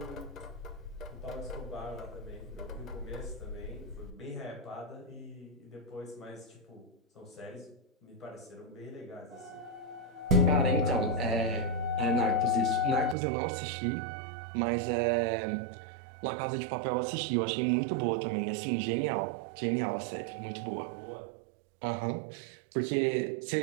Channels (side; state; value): left; drops out; at 13.2 s